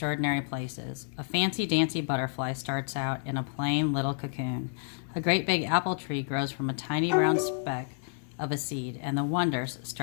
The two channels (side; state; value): right; silent; 58 dB below the other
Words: places. A fancy-dancy butterfly starts out in a plain little cocoon. A great big apple tree grows from a tiny brown speck of a seed, and the wonders